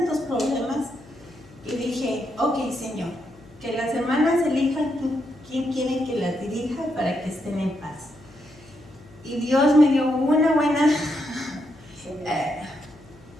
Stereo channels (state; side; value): noise; left; hum, 24 dB below the sound